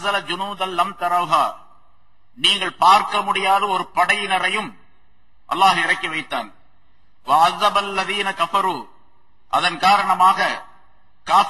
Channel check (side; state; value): both; identical; correlation 1.00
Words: ஜுனூதல் லம் தரவுஹா, நீங்கள் பார்க்க முடியாத ஒரு படையினரையும் அல்லாஹ் இறக்கி வைத்தான். வ அஸபல்லதீன கஃபரு, அதன் காரணமாக